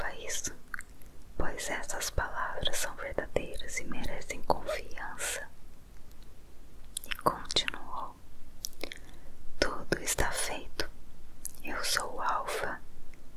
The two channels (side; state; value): both; identical; correlation 1.00